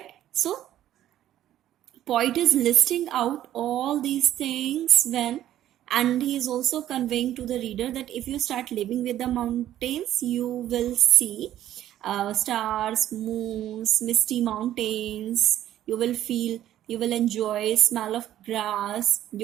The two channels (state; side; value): quieter; left; 12.4 dB